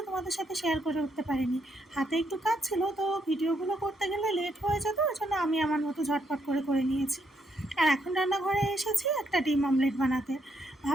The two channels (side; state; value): both; normal; correlation 0.75